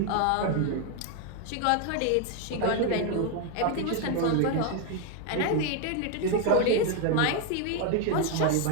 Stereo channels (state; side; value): different; both; correlation 0.01